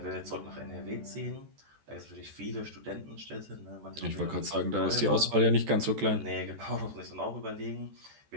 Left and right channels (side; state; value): left; late; 14 ms